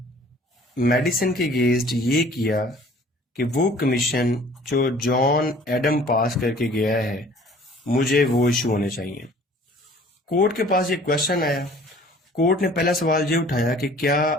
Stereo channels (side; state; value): both; normal; correlation 0.51